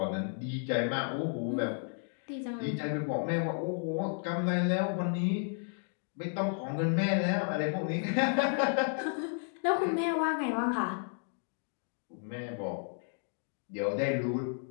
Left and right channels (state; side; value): silent; right; 56 dB below the other